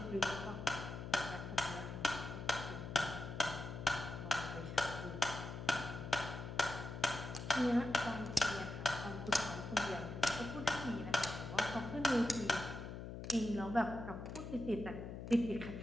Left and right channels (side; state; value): left; noise; hum, 8 dB below the sound